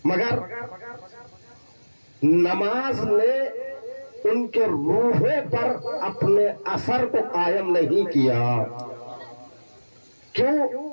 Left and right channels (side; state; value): both; inverted; correlation -1.00